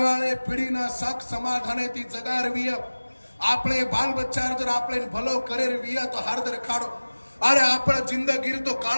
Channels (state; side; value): inverted; both; correlation -1.00